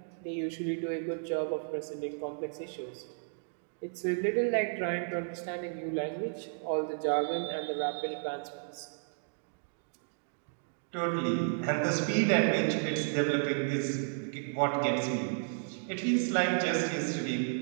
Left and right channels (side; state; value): left; silent; digital silence